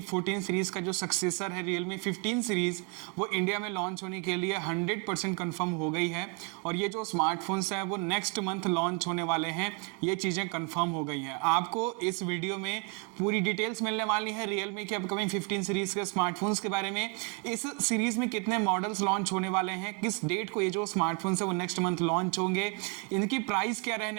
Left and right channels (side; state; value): left; quieter; 32.5 dB